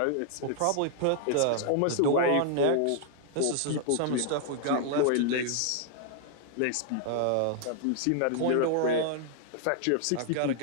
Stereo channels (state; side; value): different; both; correlation -0.01